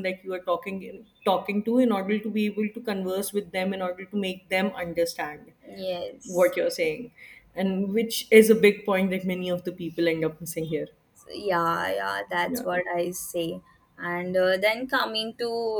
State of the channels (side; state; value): both; identical; correlation 1.00